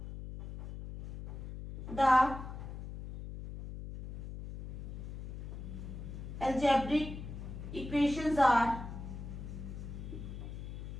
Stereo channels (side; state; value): left; noise; hum, 8 dB below the sound